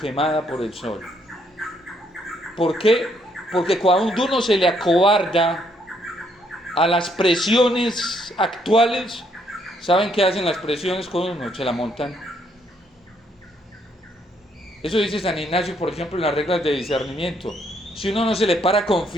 por el sol. ¿Por qué? Porque cuando uno se le acobarda a las presiones actuales, ¿saben qué hacen las presiones con uno? Se la montan. Eso dice San Ignacio, por ejemplo, en las reglas de discernimiento. Si uno no se le para con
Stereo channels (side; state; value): both; normal; correlation 0.71